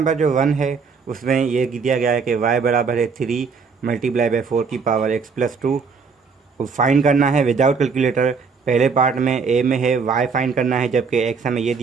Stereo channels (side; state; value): left; quieter; 5.3 dB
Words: जो 1 है उसमें ये दिया गया है कि y बराबर है 3 मल्टीप्लाई बाई 4 की पावर x प्लस 2। फाइंड करना है विदाउट कैलकुलेटर। पहले पार्ट में ए में है y फाइंड करना है, जबकि x हमें ये